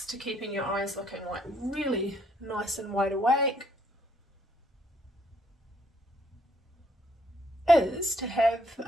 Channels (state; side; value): normal; both; correlation 0.69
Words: to keeping your eyes looking like really nice and wide awake is to have